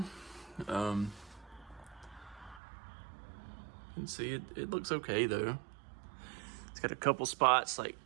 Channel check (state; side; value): drops out; left; at 2.6 s